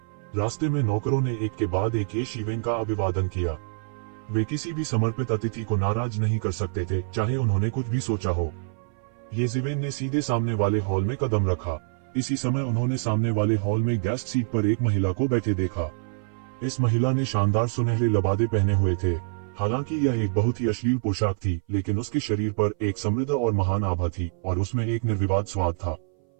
रास्ते में नौकरों ने एक के बाद एक येशिवेन का अभिवादन किया। वे किसी भी समर्पित अतिथि को नाराज नहीं कर सकते थे, चाहे उन्होंने कुछ भी सोचा हो। येशिवेन ने सीधे सामने वाले हॉल में कदम रखा। इसी समय उन्होंने सामने वाले हॉल में गेस्ट सीट पर एक महिला को बैठे देखा। इस महिला ने शानदार सुनहरे लबादे पहने हुए थे। हालांकि यह एक बहुत ही अश्लील पोशाक थी, लेकिन उसके शरीर पर एक समृद्ध और महान आभा थी और उसमें एक निर्विवाद स्वाद था।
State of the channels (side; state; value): left; silent; 58 dB below the other